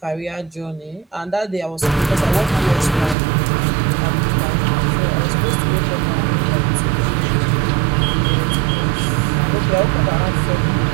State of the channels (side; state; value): left; drops out; at 3.2 s